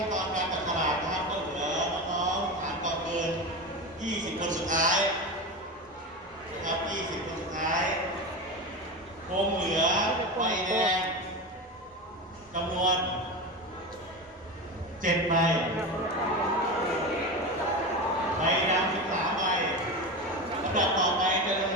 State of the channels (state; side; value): normal; both; correlation 0.23